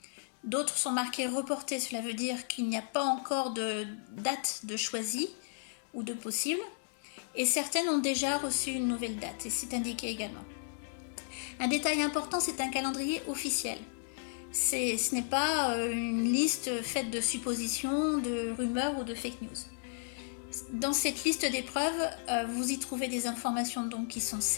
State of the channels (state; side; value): silent; right; digital silence